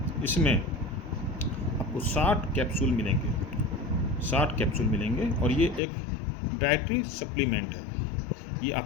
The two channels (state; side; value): drops out; right; at 5.8 s